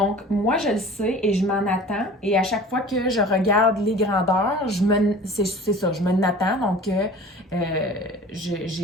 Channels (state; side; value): normal; both; correlation 0.42